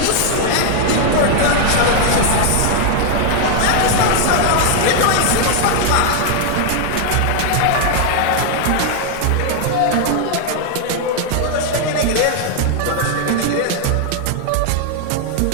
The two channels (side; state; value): both; different; correlation 0.00